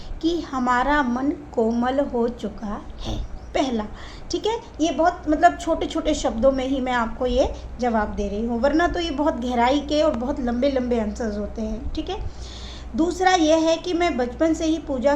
कि हमारा मन कोमल हो चुका है। पहला, ठीक है। ये बहुत, मतलब छोटे छोटे शब्दों में ही मैं आपको ये जवाब दे रही हूँ, वरना तो ये बहुत गहराई के और बहुत लंबे लंबे आंसर्स होते हैं, ठीक है। दूसरा यह है कि मैं बचपन से ही पूजा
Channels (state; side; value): identical; both; correlation 1.00